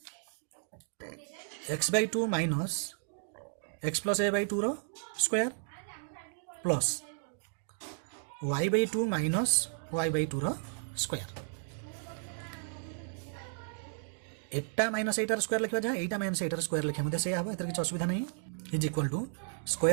x/2 minus x plus a/2 रो square plus y/2 minus y/2 रो स्क्वायर एटा माइनस एटार स्क्वायर लिखा जाए एटा माइनस एटार स्क्वायर लिखा मते से आबो एतर किछ असुविधा नहीं is equal to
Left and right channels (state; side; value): silent; left; digital silence